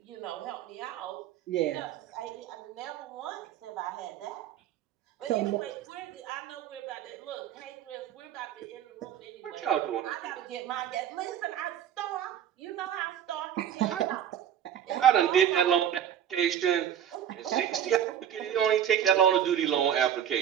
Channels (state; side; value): quieter; left; 9.8 dB